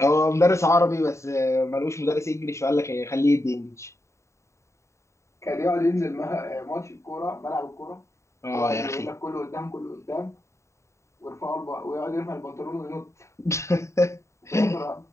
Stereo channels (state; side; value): late; right; 0.14 ms